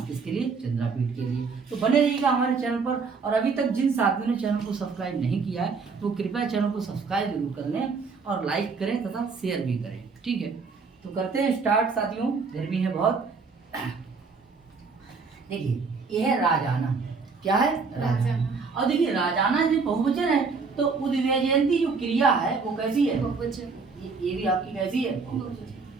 किसके लिए? चंद्रापीठ के लिए। तो बने रहिएगा हमारे चैनल पर। और अभी तक जिन साथियों ने चैनल को सब्सक्राइब नहीं किया है वो कृपया चैनल को सब्सक्राइब जरूर कर लें और लाइक करें तथा शेयर भी करें, ठीक है। तो करते हैं स्टार्ट साथियों, गर्मी है बहुत। देखिए यह है राजाना। क्या है? राजाना। और देखिए राजाना जो बहुवचन है, तो उद्व्यजयंती जो क्रिया है वो कैसी है? बहुवचन। ये भी आपकी कैसी है?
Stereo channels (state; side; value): quieter; left; 4.8 dB